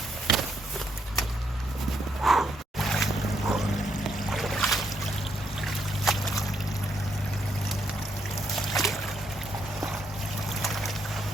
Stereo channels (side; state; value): both; normal; correlation 0.75